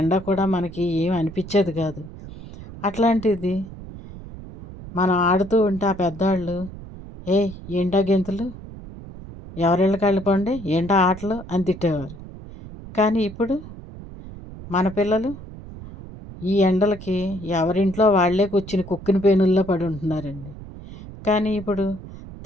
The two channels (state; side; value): noise; right; rumble, 14 dB below the sound